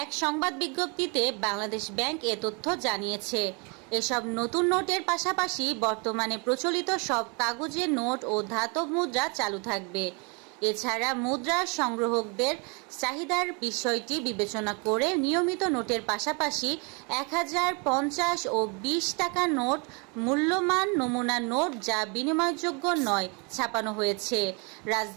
এক সংবাদ বিজ্ঞপ্তিতে বাংলাদেশ ব্যাংক এ তথ্য জানিয়েছে। এসব নতুন নোটের পাশাপাশি বর্তমানে প্রচলিত সব কাগজের নোট ও ধাতব মুদ্রা চালু থাকবে। এছাড়া মুদ্রা সংগ্রাহকদের চাহিদার বিষয়টি বিবেচনা করে নিয়মিত নোটের পাশাপাশি ১০০০, ৫০ ও ২০ টাকার নোট মূল্যমান নমুনা নোট যা বিনিময়যোগ্য নয় ছাপানো হয়েছে।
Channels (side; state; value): left; quieter; 32.6 dB